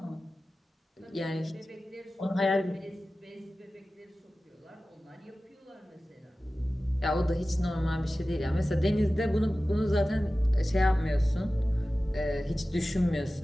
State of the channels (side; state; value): both; normal; correlation 0.96